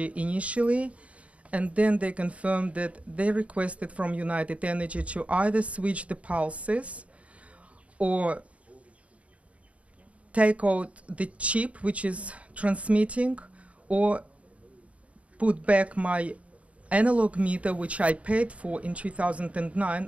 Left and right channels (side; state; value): left; late; 0.065 ms